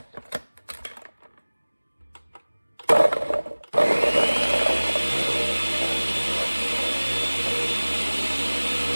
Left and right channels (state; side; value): inverted; both; correlation -1.00